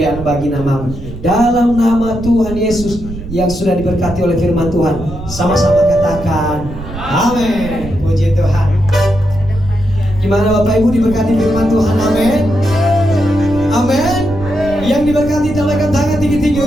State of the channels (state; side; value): noise; right; rumble, 11 dB below the sound